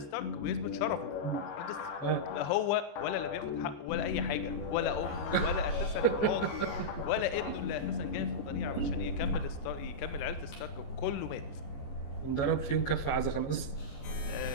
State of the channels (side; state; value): right; late; 14 ms